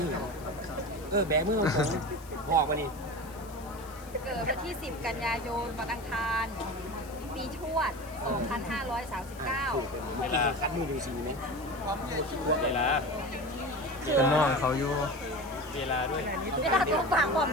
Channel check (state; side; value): noise; left; hiss, 21 dB below the sound